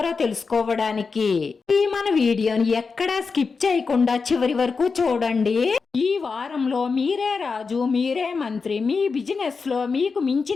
తెలుసుకోవడానికి ఈ మన వీడియోని ఎక్కడా స్కిప్ చేయకుండా చివరి వరకు చూడండి. ఈ వారంలో మీరే రాజు, మీరే మంత్రి. మీ బిజినెస్ లో మీకు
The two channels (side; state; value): right; quieter; 4.8 dB